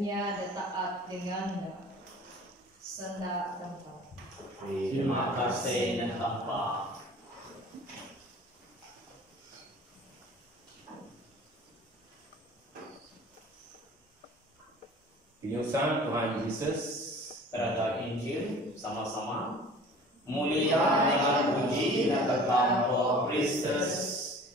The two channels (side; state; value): both; normal; correlation 0.46